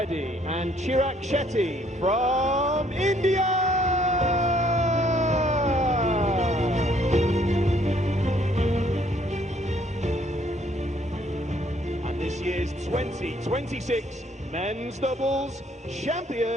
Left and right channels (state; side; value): normal; both; correlation 0.65